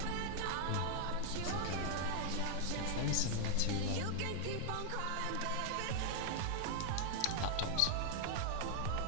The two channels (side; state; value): both; different; correlation 0.00